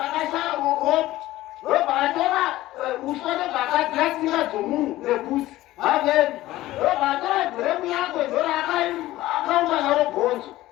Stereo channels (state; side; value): quieter; right; 16.3 dB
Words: ropa. Ropa atora uswa ndobva akadzira tsinga dzomunhu nebvudzi. Amen. Ropa atora bhuremu yako ndora akaumba naro bhonzo.